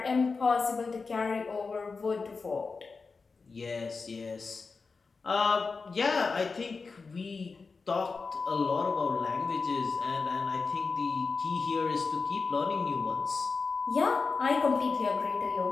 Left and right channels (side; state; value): right; quieter; 4.5 dB